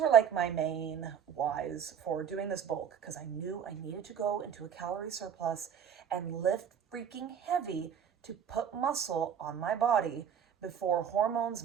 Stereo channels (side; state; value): left; quieter; 8.1 dB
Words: like my main whys for doing this bulk, because I knew I needed to go into a calorie surplus and lift freaking heavy to put muscle on my body before hormones